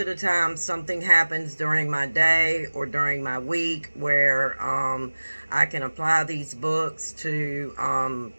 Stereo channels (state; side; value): inverted; both; correlation -1.00